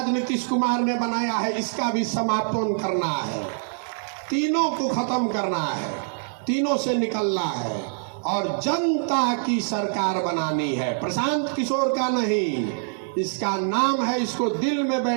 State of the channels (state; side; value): silent; left; digital silence